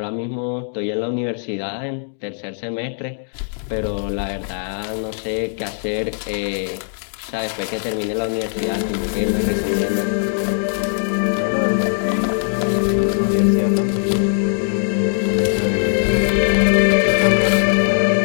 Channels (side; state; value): right; silent; digital silence